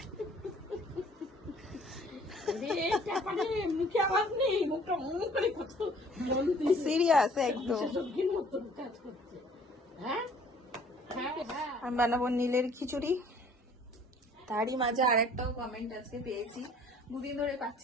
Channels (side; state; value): both; normal; correlation 0.55